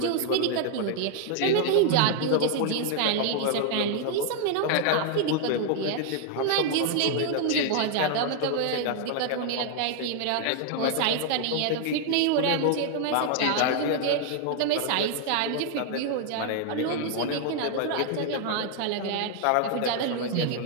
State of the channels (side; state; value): both; different; correlation 0.00